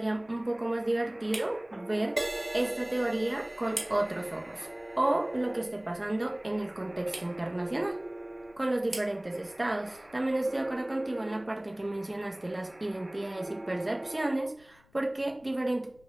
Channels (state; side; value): noise; left; rumble, 30 dB below the sound